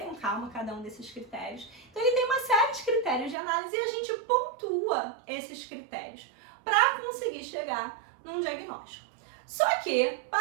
com calma cada um desses critérios. Então ele tem uma série de critérios de análise e a gente pontua esses critérios para conseguir chegar num diagnóstico. Só que,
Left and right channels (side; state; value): left; drops out; at 3.4 s